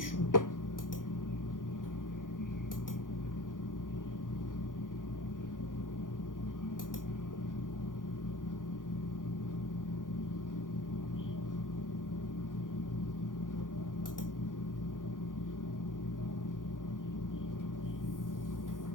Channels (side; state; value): right; late; 0.89 ms